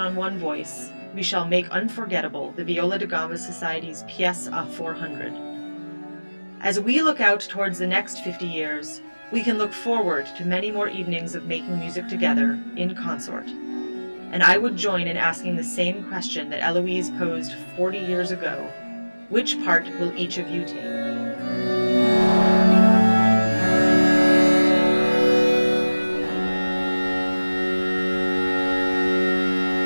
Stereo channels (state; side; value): inverted; both; correlation -1.00